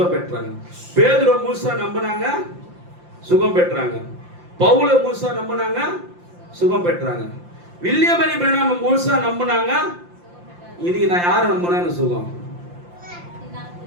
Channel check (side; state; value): left; late; 5.7 ms